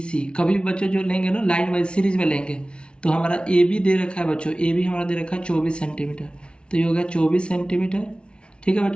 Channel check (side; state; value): right; late; 0.057 ms